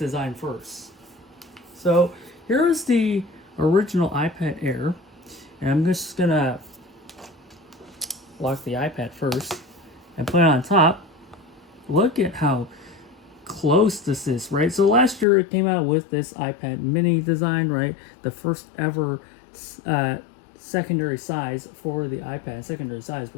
first. So here's the original iPad Air. And I'm just going to lock the iPad first and put it on top. Look at how close this is, right? So last year it came out with this iPad mini design, right? The first ever secondary size for the iPad, secondary size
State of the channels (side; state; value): right; drops out; at 15.2 s